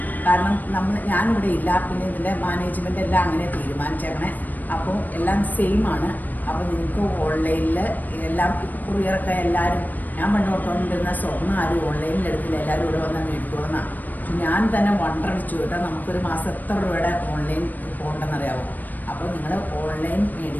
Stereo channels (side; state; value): right; late; 0.085 ms